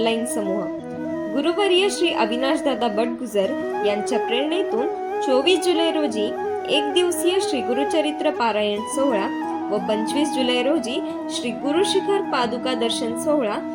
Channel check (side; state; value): both; identical; correlation 1.00